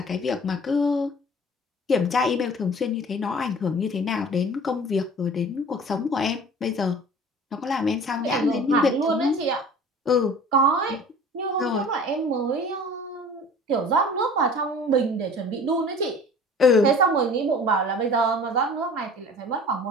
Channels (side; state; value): both; normal; correlation 0.44